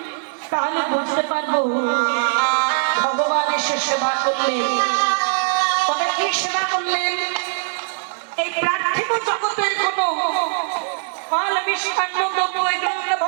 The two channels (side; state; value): left; silent; digital silence